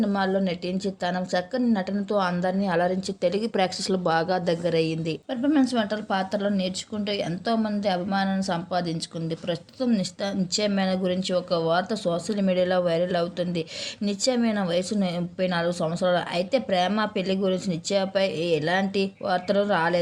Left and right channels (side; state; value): both; identical; correlation 1.00